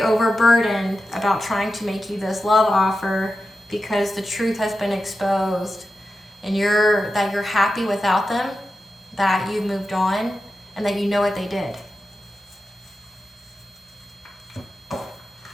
about trying to make you this love offer because the truth has been exposed and that you're happy without them, that you've moved on, and that you know what they did.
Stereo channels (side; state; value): both; normal; correlation 0.91